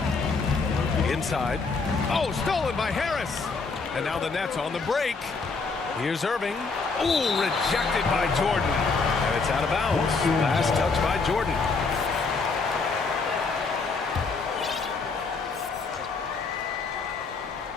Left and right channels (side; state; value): right; quieter; 4.4 dB